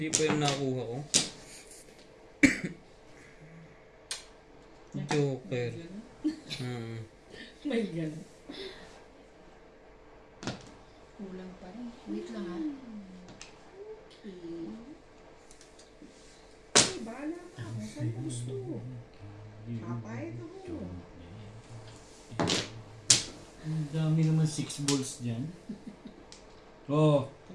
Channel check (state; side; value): identical; both; correlation 1.00